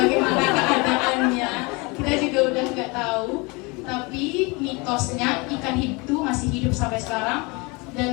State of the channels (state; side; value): quieter; right; 27.3 dB